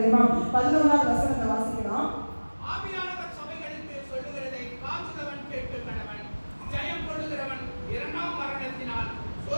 11வது வசனத்தை வாசிக்கலாம். ஆவியானவர் சபைகளுக்கு சொல்லுகிறதை காதுள்ளவன் கேட்டு கடவன். ஜெயம் கொள்ளுகிறவன் இரண்டாம் மரணத்தினால்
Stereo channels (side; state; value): both; inverted; correlation -1.00